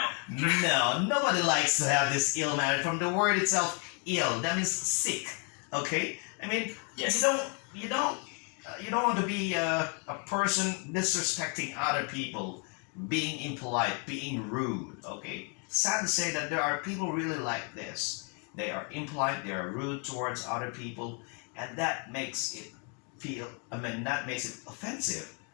No, nobody likes to have this ill manner. From the word itself, ill, that means sick. Okay? I mean, Yes. you don't want to be a person disrespecting other people, being impolite, being rude. Okay? Sad to say that there are people really like this. They are impolite, they are rude towards other people, and that makes it that makes it offensive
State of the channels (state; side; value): quieter; right; 38.1 dB